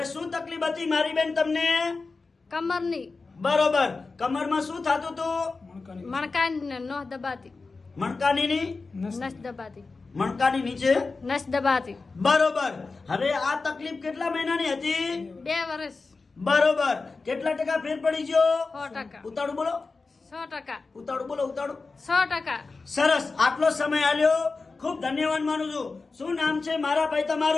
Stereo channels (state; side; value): quieter; right; 4.0 dB